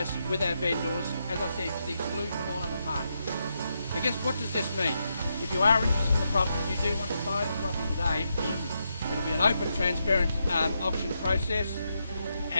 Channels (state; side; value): inverted; both; correlation -0.83